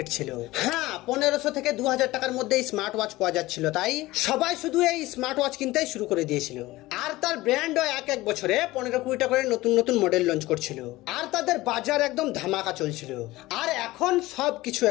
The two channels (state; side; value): quieter; right; 18.5 dB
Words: ছিল। হ্যাঁ, 1500 থেকে 2000 টাকার মধ্যে স্মার্ট ওয়াচ পাওয়া যাচ্ছিল, তাই সবাই শুধু এই স্মার্ট ওয়াচ কিনতেই শুরু করে দিয়েছিল। আর তার ব্র্যান্ডও এক বছরে 15-20টা করে নতুন নতুন মডেল লঞ্চ করছিল, আর তাদের বাজার একদম ধামাকা চলছিল। আর এখন সবকিছু